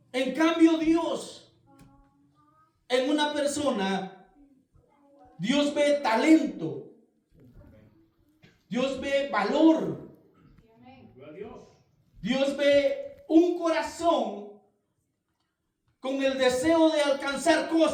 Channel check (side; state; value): both; identical; correlation 1.00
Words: En cambio, Dios, en una persona, Dios ve talento, Dios ve valor, Dios ve un corazón con el deseo de alcanzar